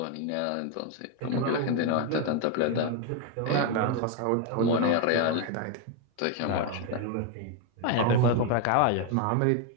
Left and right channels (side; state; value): both; different; correlation 0.01